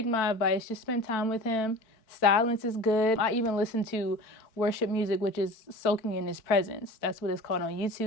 my advice. Just spend time with him. Silence is good. I even listen to worship music, which is soaking in his presence. That's what it's called on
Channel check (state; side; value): late; right; 4.5 ms